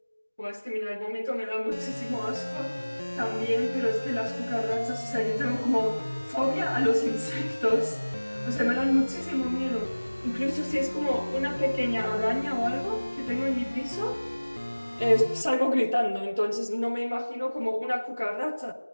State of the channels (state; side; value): inverted; both; correlation -1.00